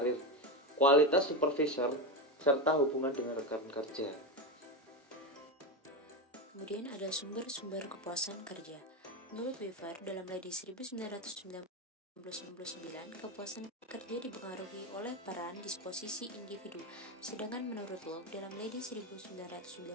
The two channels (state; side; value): normal; both; correlation 0.15